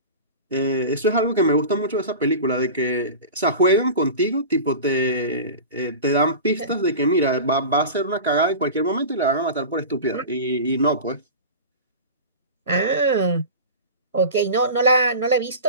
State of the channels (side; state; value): both; inverted; correlation -0.31